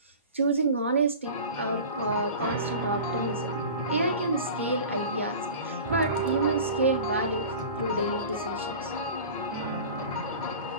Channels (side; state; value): both; inverted; correlation -0.37